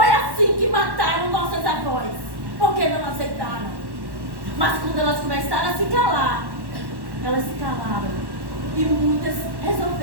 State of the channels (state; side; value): late; left; 1.1 ms